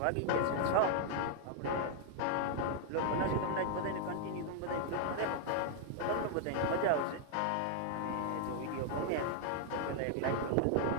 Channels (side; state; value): both; different; correlation 0.00